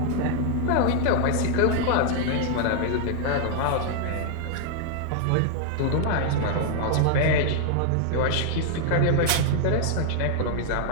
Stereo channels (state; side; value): different; both; correlation 0.00